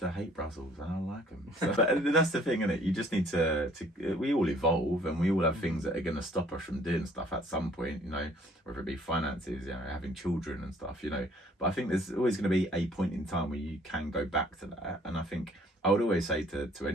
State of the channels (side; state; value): both; normal; correlation 0.58